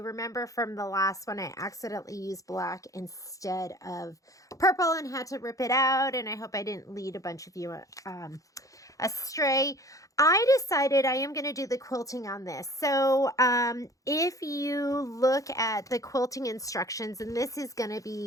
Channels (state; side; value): late; right; 0.16 ms